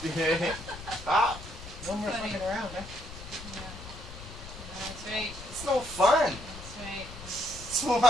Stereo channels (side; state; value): left; noise; rumble, 13 dB below the sound